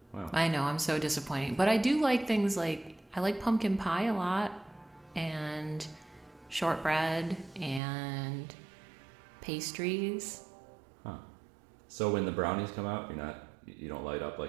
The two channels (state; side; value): drops out; left; at 7.8 s